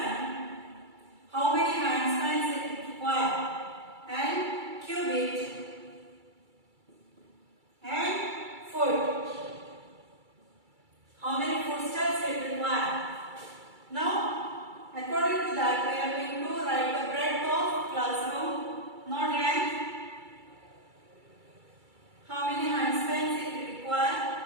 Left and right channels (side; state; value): left; late; 2.3 ms